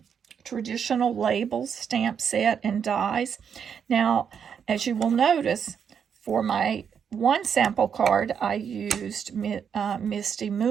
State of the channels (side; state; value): left; quieter; 7.4 dB